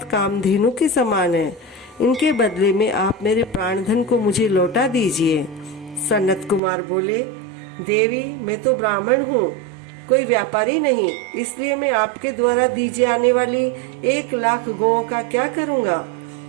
कामधेनु के समान है। इनके बदले में आप मेरे प्राणधन को मुझे लौटा दीजिए। सनत कुमार बोले, देवी, मैं तो ब्राह्मण हूँ, कोई व्यापारी नहीं, इसलिए मैं आपके द्वारा दी जाने वाली 1,00,000 गौओं का क्या करूँगा।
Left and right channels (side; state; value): left; drops out; at 6.6 s